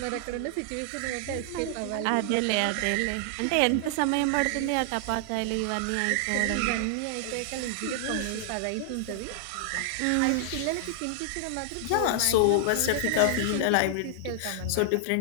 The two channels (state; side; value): different; both; correlation 0.00